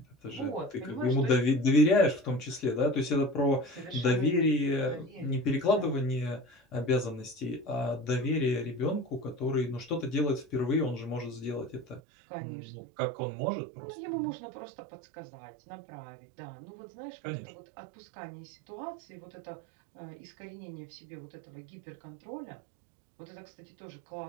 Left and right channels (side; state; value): left; drops out; at 12.0 s